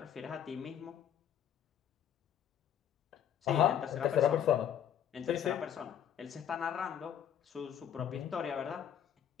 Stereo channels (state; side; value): quieter; right; 9.6 dB